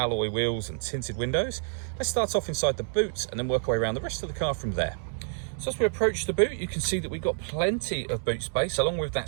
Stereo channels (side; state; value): left; silent; digital silence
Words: wheels and tinted windows. Let's start off inside the boot and then work our way around the rest of the car from there. So as we approach the boot, you can see that we've got plenty of boot space, along with that